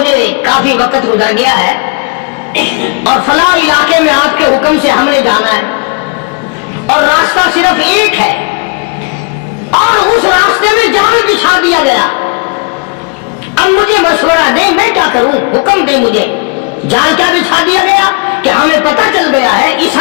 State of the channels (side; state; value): right; quieter; 30.5 dB